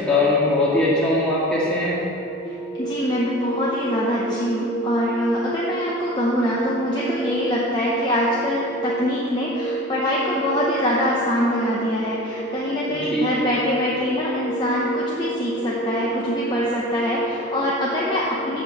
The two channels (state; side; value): normal; both; correlation 0.37